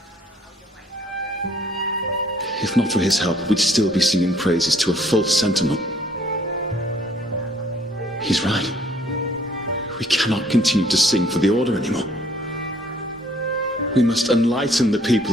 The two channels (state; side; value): normal; both; correlation 0.61